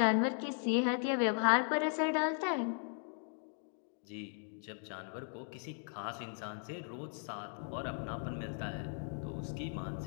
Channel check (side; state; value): right; silent; 53 dB below the other